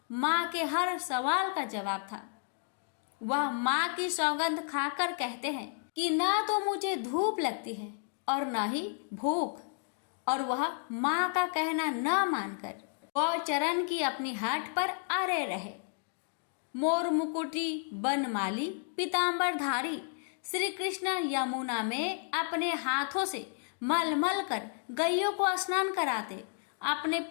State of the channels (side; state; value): right; silent; 56 dB below the other